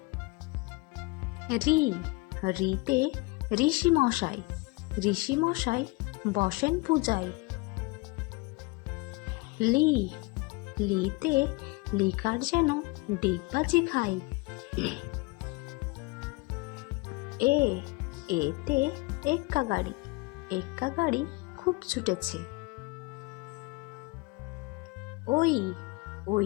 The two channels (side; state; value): right; quieter; 24.5 dB